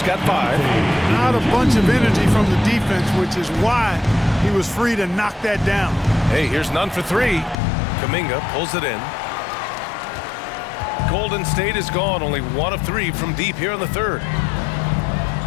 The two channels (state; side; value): drops out; right; at 7.6 s